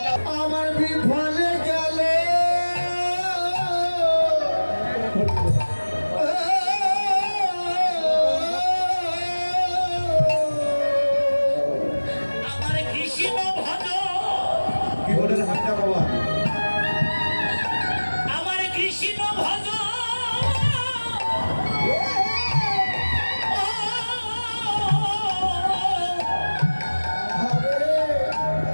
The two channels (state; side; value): inverted; both; correlation -1.00